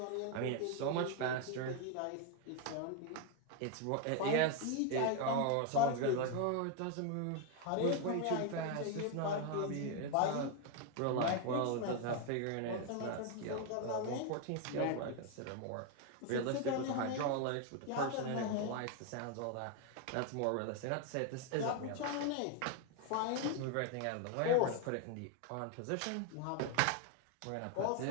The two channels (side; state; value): both; different; correlation 0.01